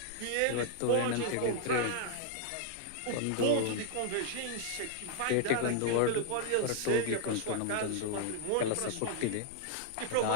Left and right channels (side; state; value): both; different; correlation -0.01